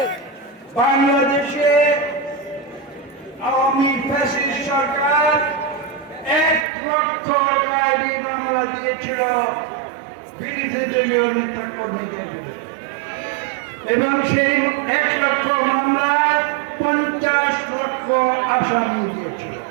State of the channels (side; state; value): left; drops out; at 6.7 s